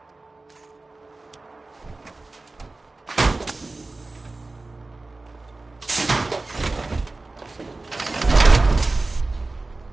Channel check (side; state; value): left; quieter; 3.2 dB